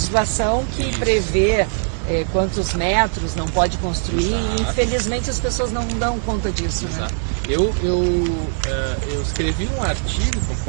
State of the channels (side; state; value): left; silent; digital silence